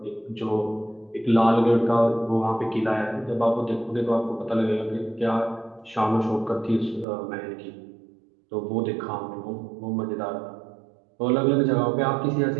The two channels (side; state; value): left; drops out; at 7.1 s